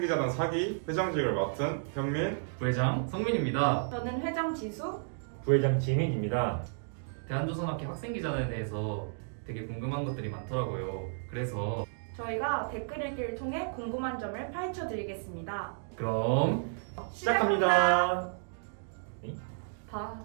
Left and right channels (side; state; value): left; silent; digital silence